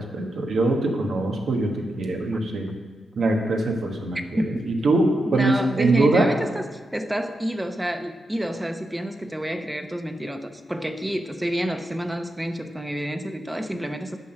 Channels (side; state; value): both; normal; correlation 0.87